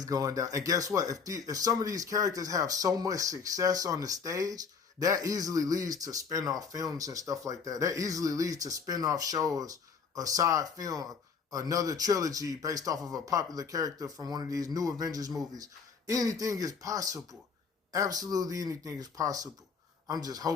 going down. And guess what? If some of these characters have so much success on the stage, that easily leads to spin-off films and stuff like that. That easily leads to spin-off shows, a side film, another trilogy based off of a popular character from one of these new Avengers movies. Anything is possible. Absolutely anything is possible. I'm just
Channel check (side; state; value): right; quieter; 5.7 dB